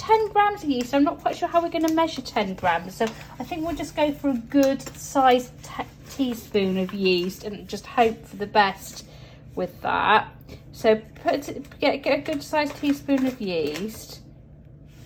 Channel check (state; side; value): identical; both; correlation 1.00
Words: grams of yeast. I'm not quite sure how we're going to measure 10 grams. So I think we'll just go for a good sized teaspoon of yeast and just hope for the best with that. So get a good sized teaspoon of yeast.